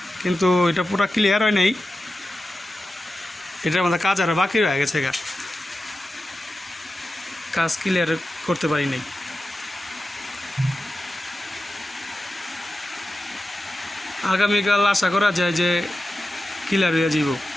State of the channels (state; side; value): normal; both; correlation 0.92